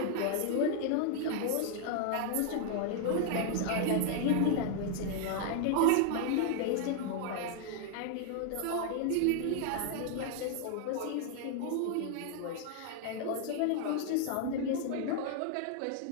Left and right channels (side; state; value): both; different; correlation 0.00